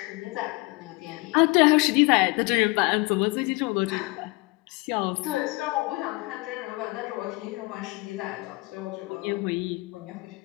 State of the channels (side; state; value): right; quieter; 24.8 dB